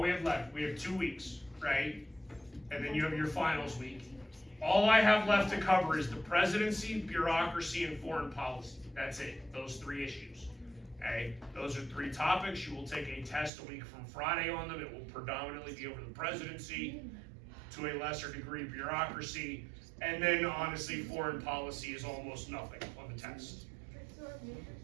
we have left, we have 2 weeks, right? And then you have your finals week. All I have left to cover is the presidency, bureaucracy, and foreign policy. That's it, those 3 issues. Okay, those are 3 topics. You will take a test a week from Friday on them. It will predominantly be over the presidency, to a lesser degree bureaucracy, and then honestly foreign policy is almost nothing on the test.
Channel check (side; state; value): left; drops out; at 13.5 s